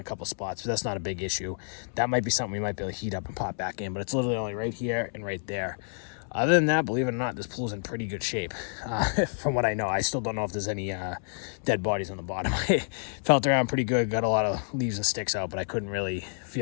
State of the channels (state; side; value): silent; right; 59 dB below the other